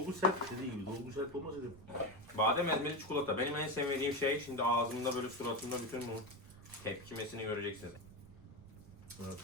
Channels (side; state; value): right; noise; rumble, 19 dB below the sound